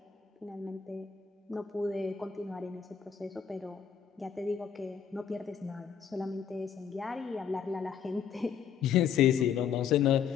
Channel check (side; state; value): right; quieter; 7.6 dB